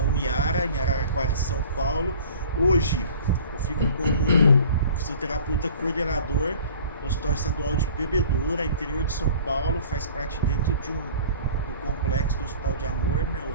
em Araraquara, São Paulo. Hoje eu fico como fisioterapeuta coordenador no Hospital Estadual de Bebedouro, interior de São Paulo, faz parte dentro do complexo do Hospital de Amor, né, o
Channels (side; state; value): both; inverted; correlation -0.46